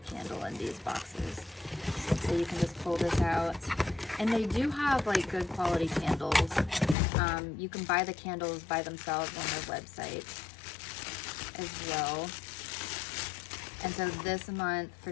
candle in these boxes. So you can just pull this out. And they do have like good quality candles. You can buy the candles by themselves on their website as well. And so this month for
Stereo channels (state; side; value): drops out; right; at 7.0 s